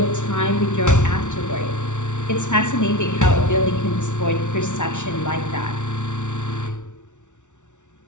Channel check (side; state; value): right; late; 0.85 ms